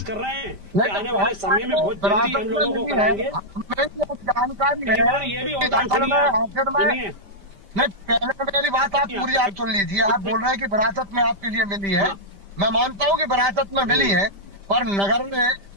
कर रहे हैं कि आने वाले समय में बहुत जल्दी हम लोगों को कराएंगे। जानकारी ये भी होता है। नहीं, पहले मेरी बात आप पूरी आप सुन लीजिए। आप बोल रहे हैं कि विरासत में आपके लिए मिली है, मैं मानता हूँ कि विरासत में मिली है, पर नगर में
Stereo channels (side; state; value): left; late; 5.1 ms